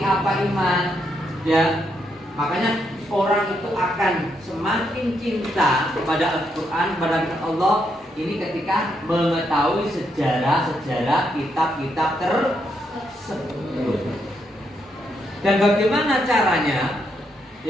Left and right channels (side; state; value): both; normal; correlation 0.78